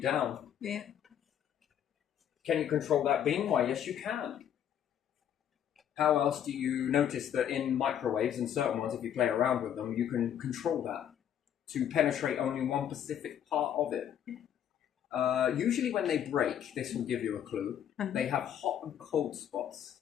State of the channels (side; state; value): right; quieter; 9.7 dB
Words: Yeah. Can you control that beam? Why, yes, you can. How else do you notice that in microwaves and certain ones, if you play around with them, you can control that to penetrate only one specific part of it? Usually when they break, this will give you a clue, they have hot and cold